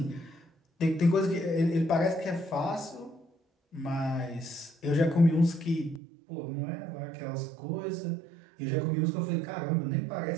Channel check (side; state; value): left; drops out; at 6.0 s